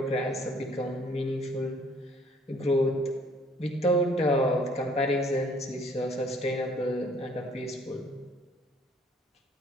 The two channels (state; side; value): normal; both; correlation 0.59